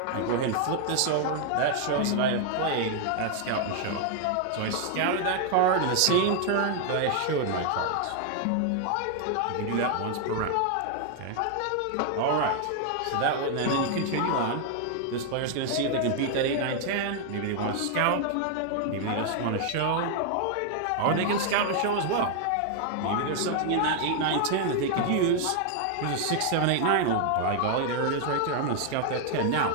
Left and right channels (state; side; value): different; both; correlation 0.00